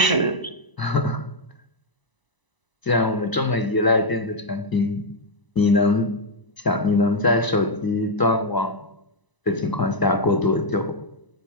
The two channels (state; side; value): late; right; 1.0 ms